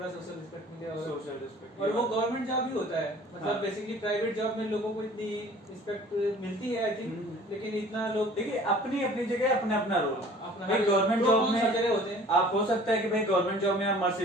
सोशल रिस्पेक्ट मिले, और सोशल रिस्पेक्ट, और वो गवर्नमेंट जॉब ही होता है, मतलब हाँ। बेसिकली प्राइवेट जॉब में लोगों को इतनी रिस्पेक्ट मिलती है आई थिंक, लेकिन इतना लोग देखिए अपनी अपनी जगह अपना अपना रोल। अपना भाई गवर्नमेंट तो जॉब कौन सा में जगह होते हैं। आप हो सकता है कि भाई गवर्नमेंट जॉब में आप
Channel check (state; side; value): normal; both; correlation 0.49